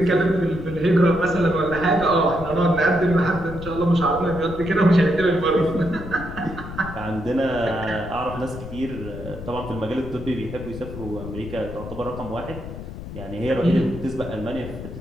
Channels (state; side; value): noise; left; rumble, 10 dB below the sound